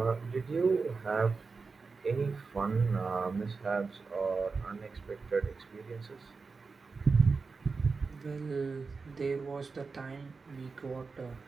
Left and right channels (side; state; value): left; quieter; 4.5 dB